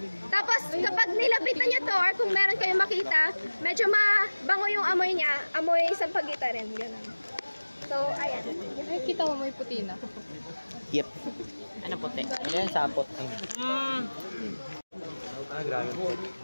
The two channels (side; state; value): both; inverted; correlation -1.00